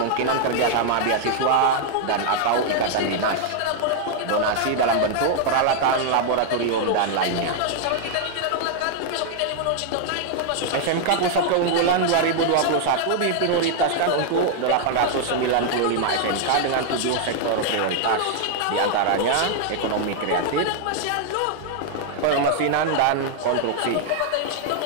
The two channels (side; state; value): both; different; correlation 0.00